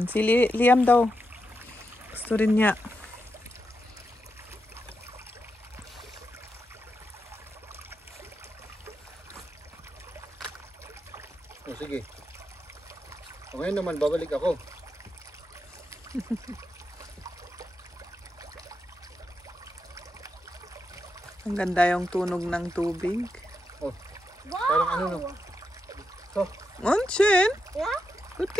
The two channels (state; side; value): normal; both; correlation 0.85